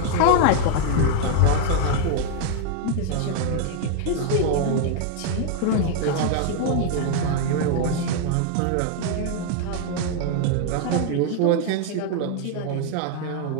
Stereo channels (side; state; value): both; different; correlation 0.00